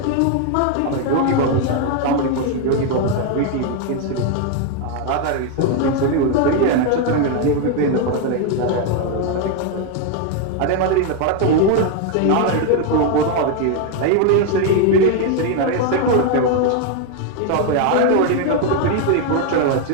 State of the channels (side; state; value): both; different; correlation 0.01